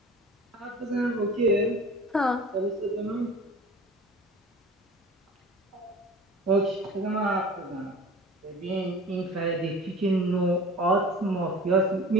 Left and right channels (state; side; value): normal; both; correlation 0.40